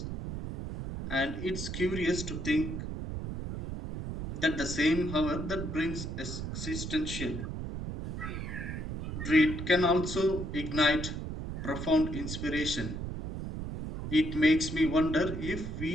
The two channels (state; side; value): noise; right; rumble, 5 dB below the sound